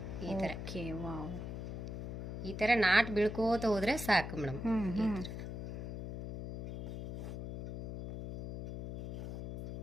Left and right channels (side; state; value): left; noise; hum, 6 dB below the sound